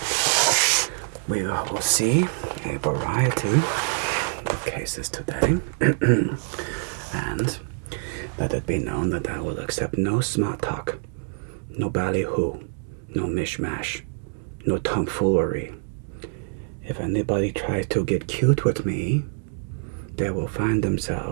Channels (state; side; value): silent; left; digital silence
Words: we will see a variety of cases today. And let it be known that I will accept no smart talk, no ballyhoo, no mishmash, no tomfoolery. If anybody tries to get cute with me, they will find